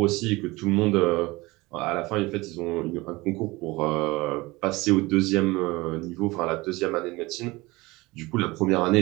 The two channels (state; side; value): quieter; left; 21.9 dB